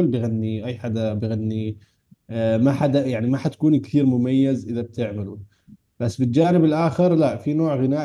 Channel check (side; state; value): both; identical; correlation 1.00